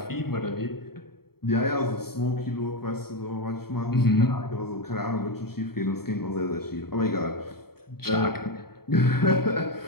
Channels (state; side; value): late; right; 0.95 ms